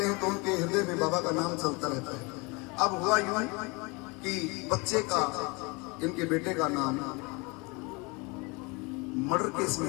हैं तो उनके हृदय में बाबा का नाम चलता रहता है। अब हुआ यूं कि बच्चे का, इनके बेटे का नाम मर्डर केस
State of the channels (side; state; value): right; quieter; 28.1 dB